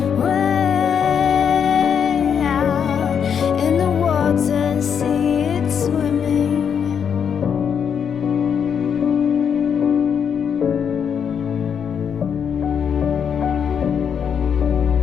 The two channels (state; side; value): quieter; right; 7.5 dB